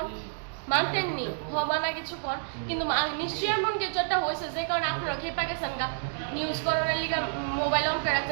মানতেননি মানা কিছু কোন, কিন্তু নিশ্চয়ই এমন কিছু একটা হয়েছে যে কারণে আপনারা খেপা গেছেন গা নিউজ করার লিগা মোবাইল অন করে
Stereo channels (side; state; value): left; silent; digital silence